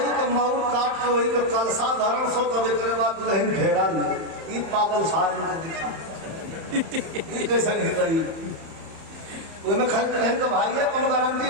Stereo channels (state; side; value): late; left; 31 ms